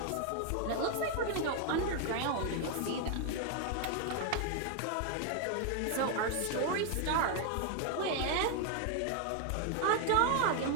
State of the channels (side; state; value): both; different; correlation 0.01